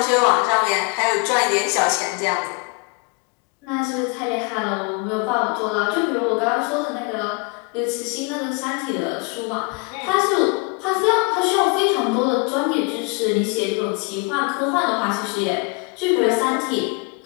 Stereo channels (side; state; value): right; quieter; 31.7 dB